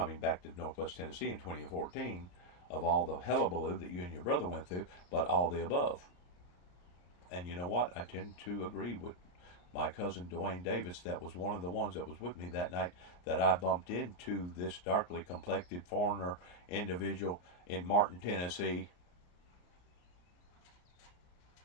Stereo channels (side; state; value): right; late; 34 ms